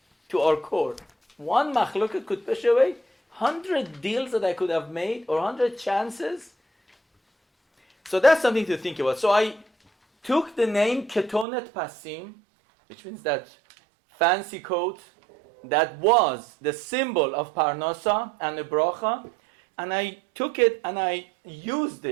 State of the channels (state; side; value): drops out; left; at 11.5 s